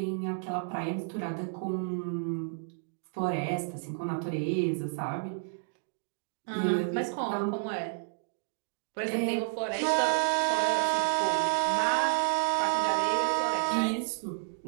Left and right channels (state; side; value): silent; left; digital silence